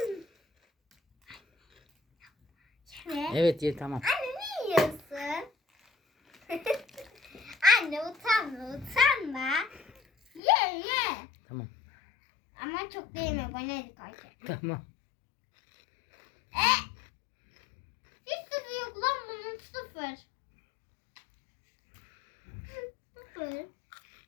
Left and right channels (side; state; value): right; drops out; at 10.4 s